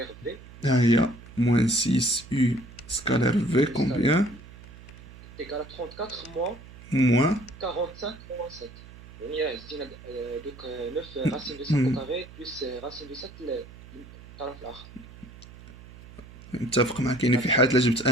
v ها هي موان 6 يو سكالير في كومبيان est égal à 34 moins موان 45 moins 7. يعني زدنا دوك 9 racine de 5 au carré plus racine de 7 الطرف الآخر. متفق معك. يعني في حالة لا جبت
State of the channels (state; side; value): noise; right; hum, 18 dB below the sound